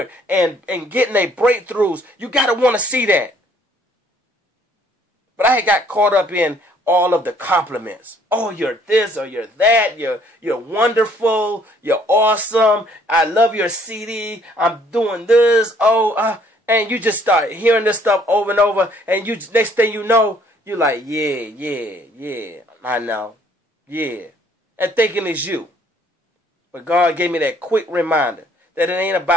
and getting their breakthroughs. You got to want to see that. But I had got caught up in all of the compliments. Oh, you're this or you're that. You're wonderful. You're awesome. I love your CD. I'm doing this. And you just start hearing this stuff over and over. And next thing you know, you're like, yeah, I know. Yeah. And thinking it's you. But God gave me that quick reminder that it ain't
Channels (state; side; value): normal; both; correlation 0.62